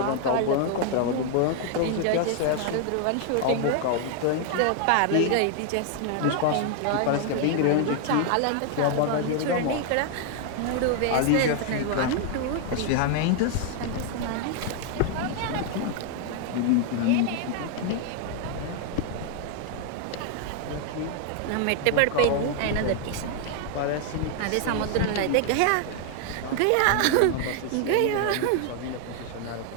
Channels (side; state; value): both; different; correlation 0.00